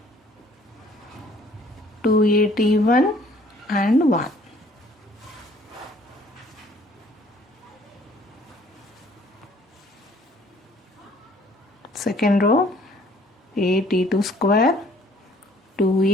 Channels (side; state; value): both; normal; correlation 0.58